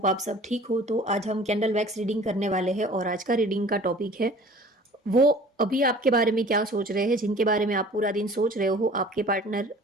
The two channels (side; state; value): both; normal; correlation 0.47